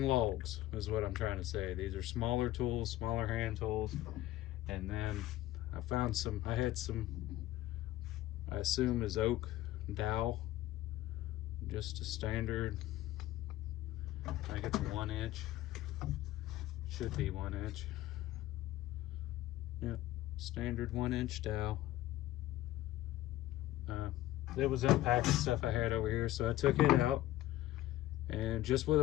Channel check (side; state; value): right; quieter; 15.3 dB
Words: logs, is what I'm trying to say. These are smaller tools, smaller hand tools. And then I had some, I assume is oak dowel, just a standard, I think it's 1 inch, should be 1 inch. Yep, standard 1 inch dowel. It was unpacked stuff I had over here, so I took it out and just with